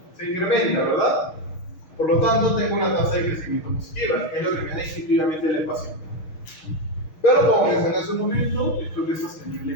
Se incrementa, ¿verdad? Por lo tanto, tengo una tasa de crecimiento positiva, que es lo que me da instintivamente la ecuación. Pero como mencioné hace un momento, esto no es sostenible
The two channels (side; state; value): right; late; 6.4 ms